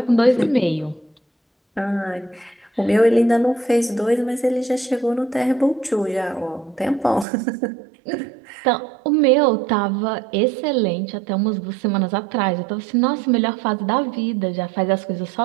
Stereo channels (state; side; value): drops out; left; at 7.2 s